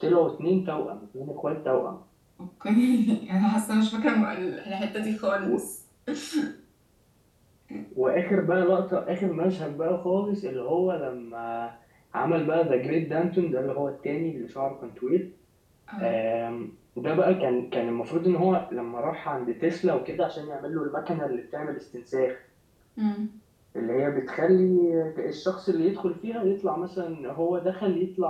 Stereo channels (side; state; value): both; identical; correlation 1.00